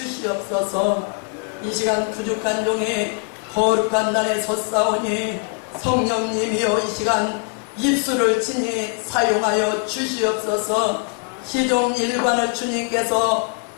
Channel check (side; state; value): right; quieter; 39.8 dB